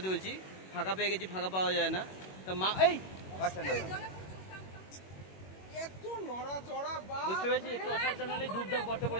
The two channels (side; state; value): right; late; 21 ms